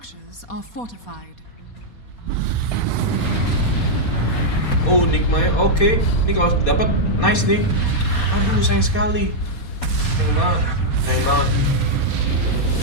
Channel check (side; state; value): right; late; 4.2 ms